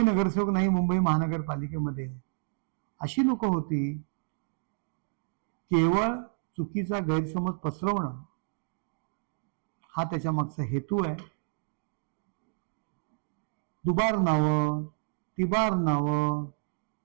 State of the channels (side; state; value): left; silent; digital silence